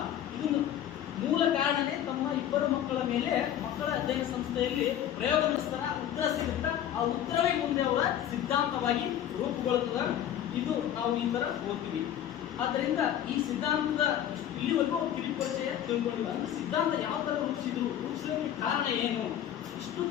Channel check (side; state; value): right; quieter; 10.8 dB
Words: ಇದನ್ನು ಮೂಲ ಕಾರಣನೇ ತಮ್ಮ 2 ಮಕ್ಕಳ ಮೇಲೆ ಮಕ್ಕಳ ಅಧ್ಯಯನ ಸಂಸ್ಥೆಯಲ್ಲಿ ಪ್ರಯೋಗ ನಡೆಸ್ತಾರ. ಉತ್ತರ ಸಿಗುತ್ತಾ ಆ ಉತ್ತರವೇ ಮುಂದೆ ಅವರ ಸಿದ್ಧಾಂತವಾಗಿ ರೂಪುಗೊಳ್ಳುತ್ತದೆ. ಇದು ನಾವು ಈ ತರ ಓದ್ತೀವಿ. ಆದ್ದರಿಂದ ಈ ಸಿದ್ಧಾಂತದ ಇಲ್ಲಿವರೆಗೂ ಕಿರಿಪರಿಚಯ ತಿಳ್ಕೊಂಡಿಲ್ಲ. ಅಂದ್ರೆ ಸಿದ್ಧಾಂತ ಯಾವ ತರ ರೂಪಿಸಲಿಕ್ಕೆ ಕಾರಣ ಏನು, ಇಷ್ಟು